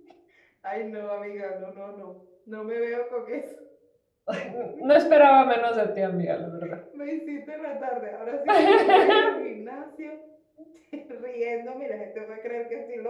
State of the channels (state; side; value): identical; both; correlation 1.00